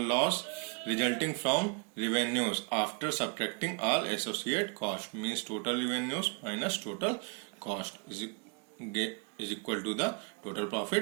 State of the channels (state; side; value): quieter; left; 33.7 dB